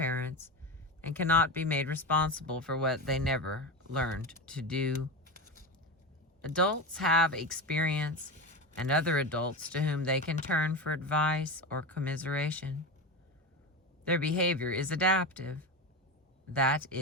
and cannot be made responsible for what they never learned to do. Adults have experience and other adults to whom they can turn for advice or commiseration. Their behavior is adaptive. That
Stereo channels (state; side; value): normal; both; correlation 0.21